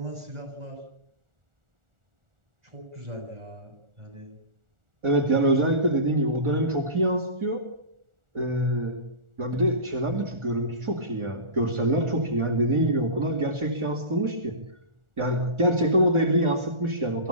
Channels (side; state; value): left; late; 1.4 ms